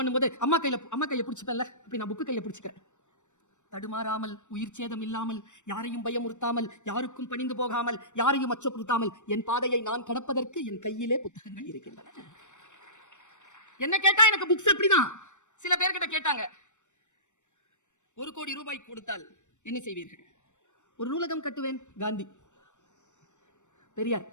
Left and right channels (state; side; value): late; right; 0.84 ms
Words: அம்மா கையை பிடிச்சிப்பேன்ல, அப்படி நான் புக்கு கையை பிடிச்சிக்கிறேன். தடுமாறாமல், உயிர் சேதம் இல்லாமல், யாரையும் பயமுறுத்தாமல், யாருக்கும் பணிந்து போகாமல், யாரையும் அச்சப்படுத்தாமல் என் பாதையை நான் கடப்பதற்கு என் கையிலே புத்தகங்கள் இருக்கின்றன. என்ன கேட்டா எனக்கு புக்ஸ் அப்படிதான். சில பேர்கிட்ட கேட்டாங்க, 1 கோடி ரூபாய் கொடுத்தால் என்ன செய்வீர்கள்? ஒரு நூலகம் கட்டுவேன். காந்தி, பெரியார்.